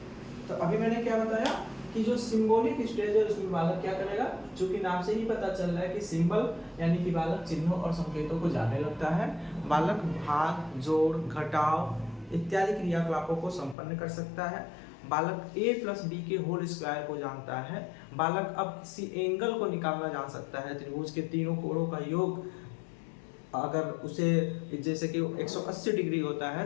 तो अभी मैंने क्या बताया कि जो सिंबॉलिक स्टेज है उसमें बालक क्या करेगा, चूंकि नाम से ही पता चल रहा है कि सिंबल यानी कि बालक चिन्हों और संकेतों को जानने लगता है। बालक भाग, जोड़, घटाव इत्यादि क्रियाकलापों को संपन्न कर सकता है। बालक a प्लस बी के होल स्क्वायर को जानता है। बालक अब किसी एंगल को निकालना जान सकता है, त्रिभुज के तीनों कोणों का योग अगर उसे जैसे कि 180 डिग्री होता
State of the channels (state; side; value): drops out; right; at 13.8 s